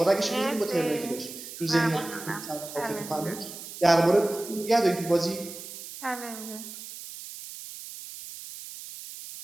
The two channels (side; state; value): right; noise; hiss, 12 dB below the sound